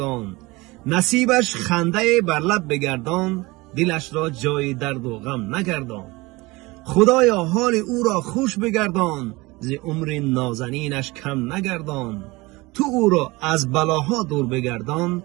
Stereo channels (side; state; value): left; quieter; 22.5 dB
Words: نصیبش خنده بر لب بگردان، دلش را جای درد و غم نگردان. خدایا حال او را خوش بگردان، ز عمر نازنینش کم نگردان. تو او را از بلاها دور بگردان،